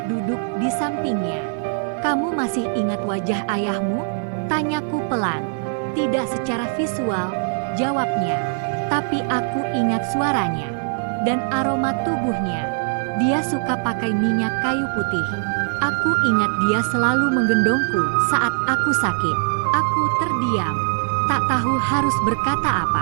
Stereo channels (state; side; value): silent; left; digital silence